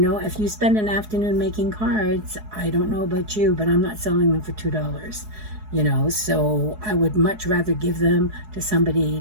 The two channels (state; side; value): late; left; 4.7 ms